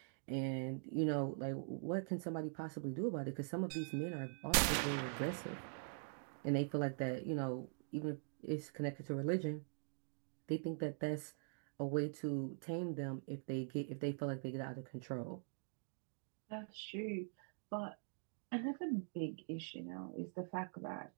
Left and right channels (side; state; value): left; silent; digital silence